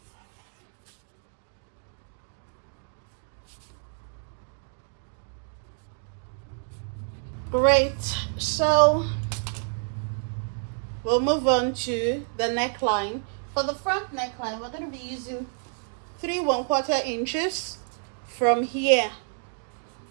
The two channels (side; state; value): left; silent; 59 dB below the other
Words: Great. So we'll move on to the neckline. For the front neckline, we're going to be using 3 1/4 inches from here,